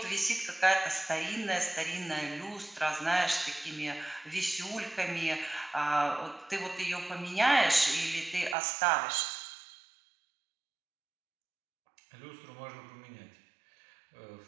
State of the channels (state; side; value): drops out; left; at 8.6 s